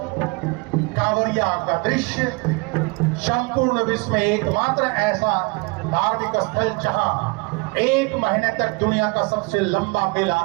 कांवरिया का दृश्य, संपूर्ण विश्व में एकमात्र ऐसा धार्मिक स्थल जहां 1 महीने तक दुनिया का सबसे लंबा मेला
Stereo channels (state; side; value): quieter; left; 27.4 dB